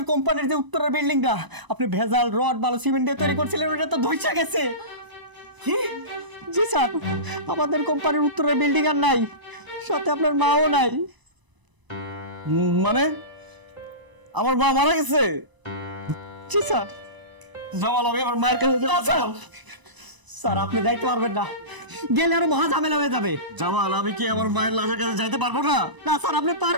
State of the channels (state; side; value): late; left; 1.0 ms